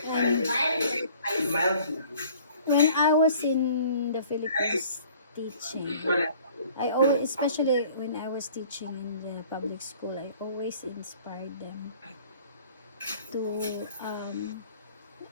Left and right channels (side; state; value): both; inverted; correlation -0.51